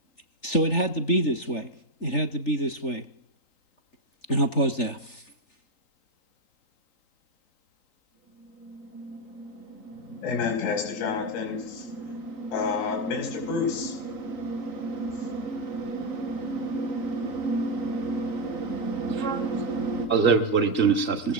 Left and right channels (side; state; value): right; late; 3.9 ms